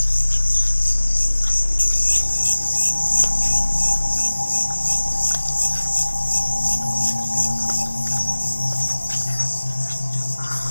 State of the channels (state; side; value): inverted; both; correlation -1.00